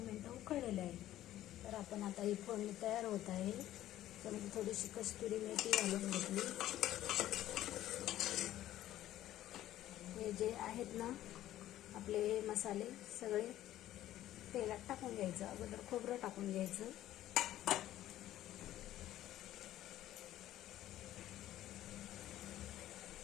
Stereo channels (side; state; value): right; quieter; 13.5 dB